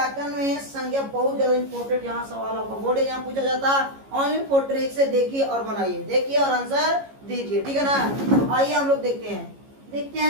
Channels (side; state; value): left; late; 15 ms